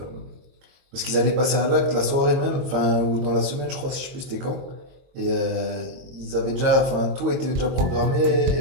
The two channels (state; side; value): late; left; 22 ms